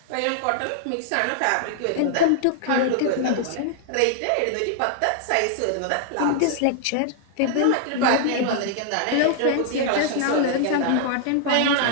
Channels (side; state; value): both; different; correlation 0.00